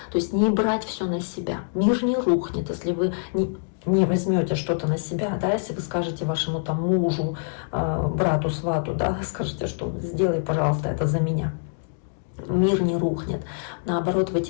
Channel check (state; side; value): silent; right; digital silence